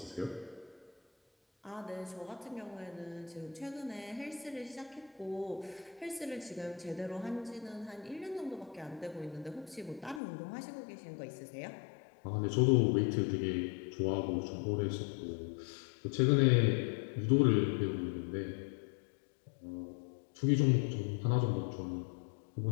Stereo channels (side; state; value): right; drops out; at 10.2 s